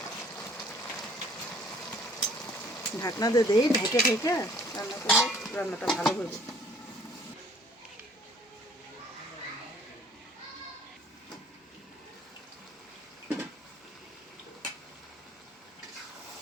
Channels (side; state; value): both; normal; correlation 0.57